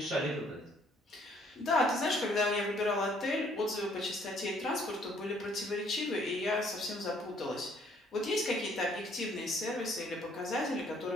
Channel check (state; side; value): normal; both; correlation 0.63